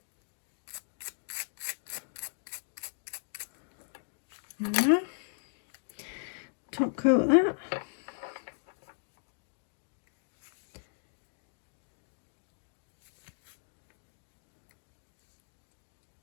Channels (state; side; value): silent; right; digital silence